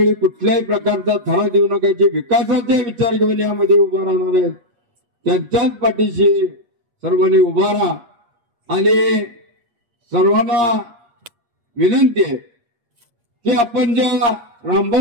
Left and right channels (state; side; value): late; left; 8.5 ms